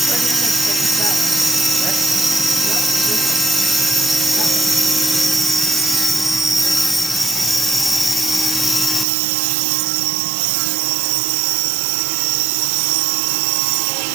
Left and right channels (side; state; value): left; drops out; at 9.1 s